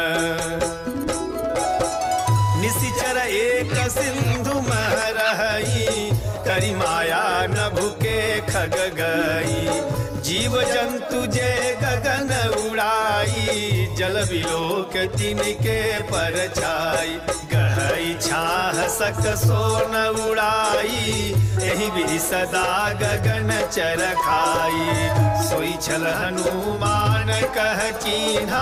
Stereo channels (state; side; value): identical; both; correlation 1.00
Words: निशिचर एक सिंधु महरही, करी माया न भूके खग गई। जीव जंतु जे गगन उड़ाई, जल बिलोक तिनके पर छाई। गहई छाह सक सोन उड़ाई, एहि विधि सदा गगन चर खाई। सोई छल हनुमान कह